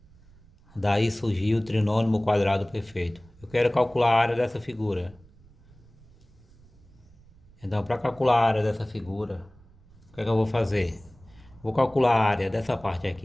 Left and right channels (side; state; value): right; noise; rumble, 26 dB below the sound